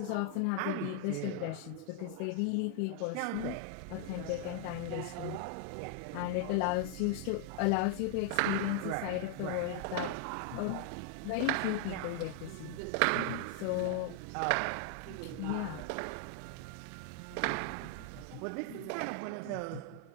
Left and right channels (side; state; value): both; different; correlation 0.00